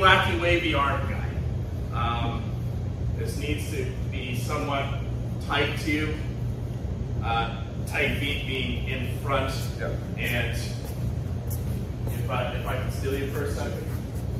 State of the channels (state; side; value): identical; both; correlation 1.00